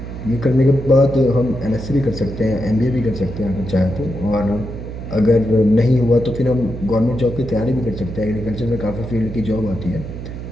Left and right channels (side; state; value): right; noise; hum, 9 dB below the sound